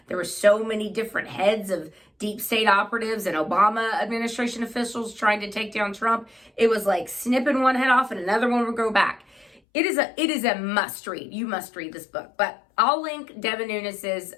There were so many different heads of deep state operatives and Obama administration officials trying to take down Trump. It was like snipping one head off and another one would grow back. It is a must read. You must read this book. But I'll link Devin Nunes's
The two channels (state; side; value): drops out; right; at 9.6 s